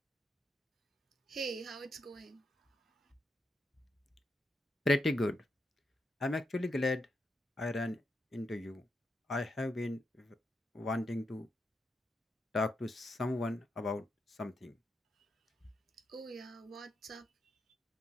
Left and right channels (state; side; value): normal; both; correlation 0.83